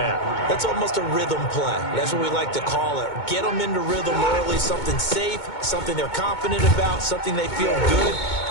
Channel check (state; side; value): late; right; 2.2 ms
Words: That's almost a rhythm play. That's what we like to call it. Get them into rhythm early, something safe, something they're confident about, something they feel good.